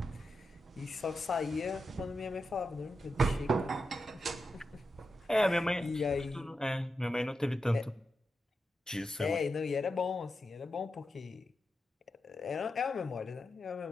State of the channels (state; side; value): normal; both; correlation 0.88